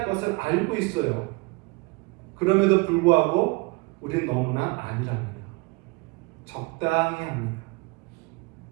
것을 알고 있어요. 그럼에도 불구하고 우리는 너무나 아니랍니다. 적당히 합니다.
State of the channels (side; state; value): left; quieter; 25.7 dB